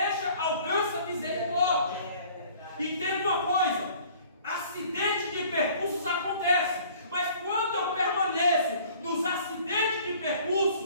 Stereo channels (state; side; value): inverted; both; correlation -0.52